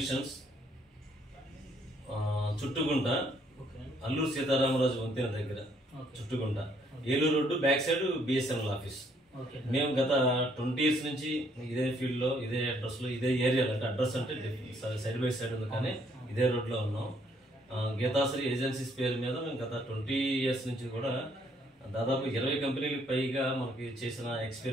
Chuttugunta, Alluri Sitaramaraju వంతెన దగ్గర Chuttugunta, Eluru road back side BSNL office. మేము గత 20 years నుంచి ఇదే ఫీల్డ్ లో, ఇదే అడ్రస్ లో, ఇదే ఏరియాలో, అంటే అడ్రస్ అంటే సైడ్ బై సైడ్ ఉంది కానీ ఇదే రోడ్ లో ఉన్నాం. గీతాశ్రీ ఏజెన్సీస్ పేరు మీద మేము గత 20 years నుంచి కూడా దాదాపు 20 కంపెనీలకు పైగా మనకి చేసిన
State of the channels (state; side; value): normal; both; correlation 0.67